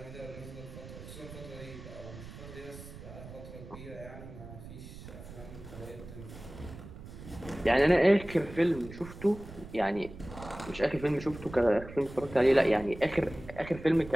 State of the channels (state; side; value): noise; right; rumble, 14 dB below the sound